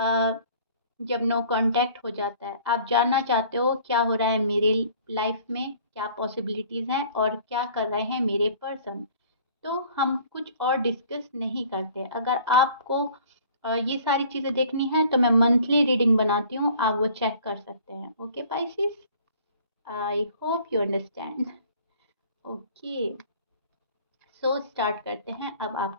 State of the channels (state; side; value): inverted; both; correlation -0.51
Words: जब नो कांटेक्ट हो जाता है। आप जानना चाहते हो क्या हो रहा है मेरे लाइफ में, क्या पॉसिबिलिटीज़ हैं और क्या कर रहे हैं मेरे पर्सन। तो हम कुछ और डिस्कस नहीं करते। अगर आपको ये सारी चीज़ें देखनी है तो मैं मंथली रीडिंग बनाती हूँ, आप वो चेक कर सकते हैं। Okay Pisces, I hope you understand. Okay, so start करते हैं अब